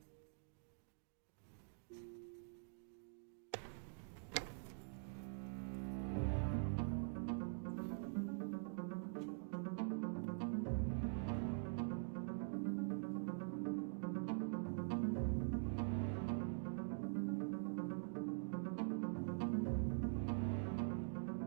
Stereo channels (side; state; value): left; silent; digital silence